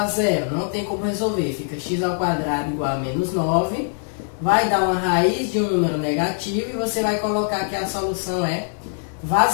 zero. Não tem como resolver. Fica x ao quadrado igual a menos 9. Vai dar uma raiz de um número negativo e você vai colocar que a solução é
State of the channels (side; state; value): right; silent; 64 dB below the other